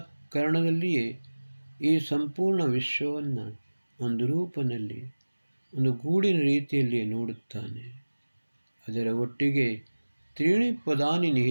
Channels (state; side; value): inverted; both; correlation -1.00